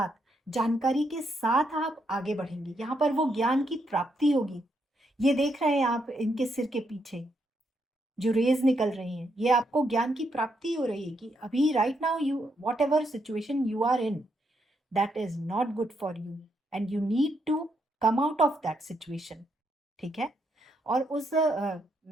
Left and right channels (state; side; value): normal; both; correlation 0.78